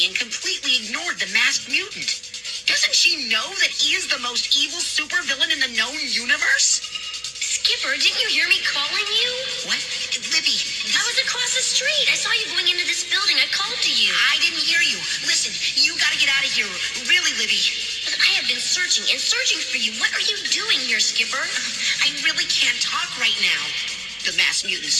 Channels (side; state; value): both; identical; correlation 1.00